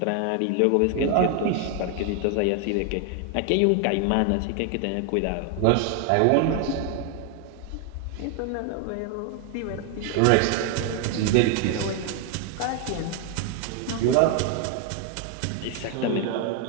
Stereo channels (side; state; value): both; different; correlation 0.01